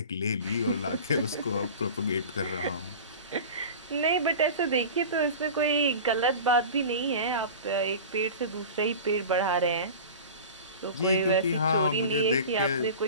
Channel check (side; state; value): both; inverted; correlation -0.34